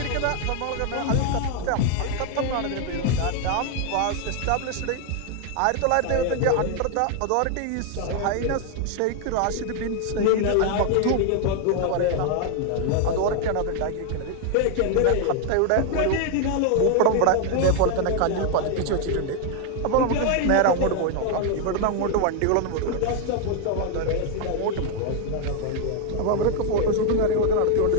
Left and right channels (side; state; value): both; different; correlation 0.00